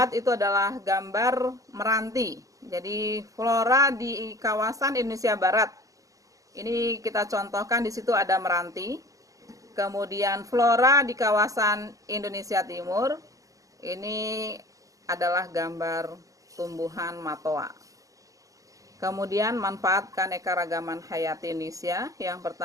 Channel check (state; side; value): late; left; 0.16 ms